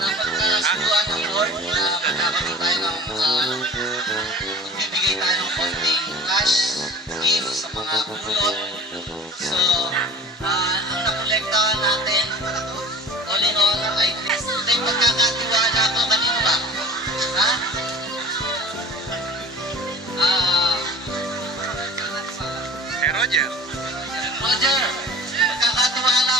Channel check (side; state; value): both; normal; correlation 0.41